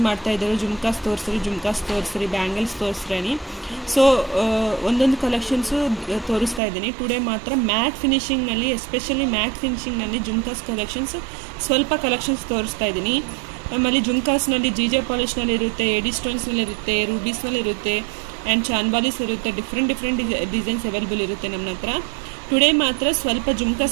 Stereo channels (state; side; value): drops out; left; at 6.6 s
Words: ಮಾಡ್ತಾಯಿದ್ದರು, ಜುಮ್ಕಾಸ್ ತೋರಿಸ್ರಿ, ಬ್ಯಾಂಗಲ್ಸ್ ತೋರಿಸ್ರಿ. ಸೊ ಒಂದೊಂದು ಕಲೆಕ್ಷನ್ಸು ತೋರಿಸ್ತಾ ಇದ್ದೀನಿ. ಟುಡೇ ಮಾತ್ರ ಮ್ಯಾಟ್ ಫಿನಿಷಿಂಗ್ನಲ್ಲಿ, ಎಸ್ಪೆಷಲಿ ಮ್ಯಾಟ್ ಫಿನಿಷಿಂಗ್ನಲ್ಲಿ ಜುಮ್ಕಾಸ್ ಕಲೆಕ್ಷನ್ಸ್ ಸ್ವಲ್ಪ ಕಲೆಕ್ಷನ್ಸ್ ತೋರಿಸ್ತಾ ಇದ್ದೀನಿ. ನಮ್ಮಲ್ಲಿ ಜುಮ್ಕಾಸ್ನಲ್ಲಿ ಜೆ ಪಾಲಿಷ್ನಲ್ಲಿ ಇರುತ್ತೆ, ಎಡಿ ಸ್ಟೋನ್ಸ್ನಲ್ಲಿರುತ್ತೆ, ರೂಬೀಸ್ನಲ್ಲಿರುತ್ತೆ ಆ್ಯಂಡ್ ಚಾನ್ಬಾಲೀಸ್ ಇರುತ್ತೆ. ಡಿಫ್ರೆಂಟ್ ಡಿಸೈನ್ಸ್ ಅವೈಲೇಬಲ್ ಇರುತ್ತೆ ನಮ್ಮ ಹತ್ರ. ಟುಡೇ ಮಾತ್ರ ಸ್ವಲ್ಪ